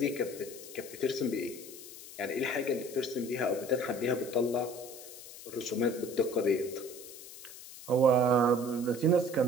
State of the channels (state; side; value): noise; left; hiss, 15 dB below the sound